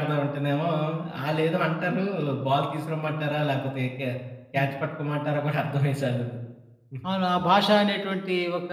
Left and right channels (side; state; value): both; identical; correlation 1.00